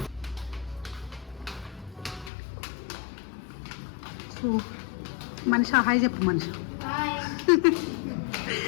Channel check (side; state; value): right; drops out; at 2.3 s